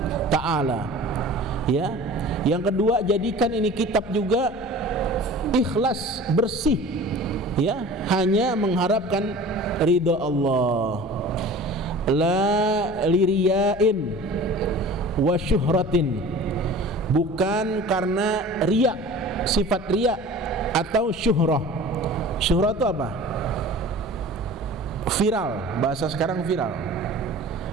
ta'ala. Ya. Yang kedua, jadikan ini kitab juga ikhlas, bersih. Ya, hanya mengharapkan ridha Allah. La liriyain wa syuhratin. Bukan karena riya, sifat riya atau syuhrah. Syuhrah itu apa? Viral, bahasa sekarang viral.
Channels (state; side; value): normal; both; correlation 0.41